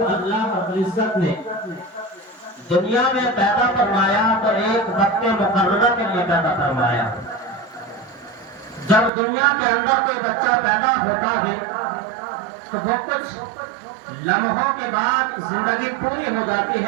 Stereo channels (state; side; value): drops out; left; at 9.1 s